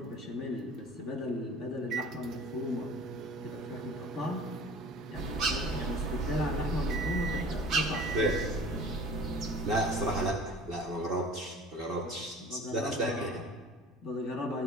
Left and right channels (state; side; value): normal; both; correlation 0.44